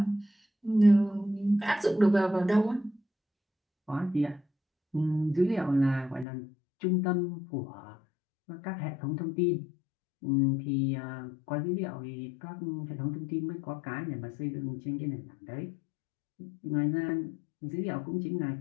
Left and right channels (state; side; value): drops out; right; at 6.2 s